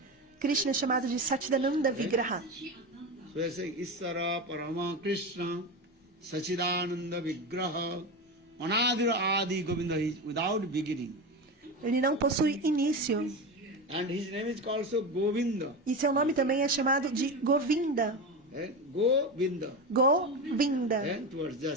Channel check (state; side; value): normal; both; correlation 0.21